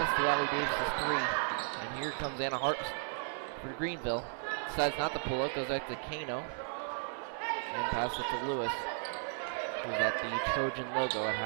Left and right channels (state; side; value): silent; left; 55 dB below the other